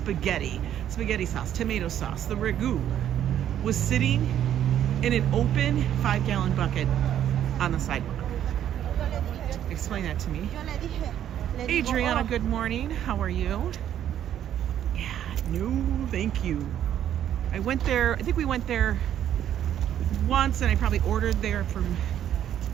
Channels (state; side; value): quieter; left; 10.6 dB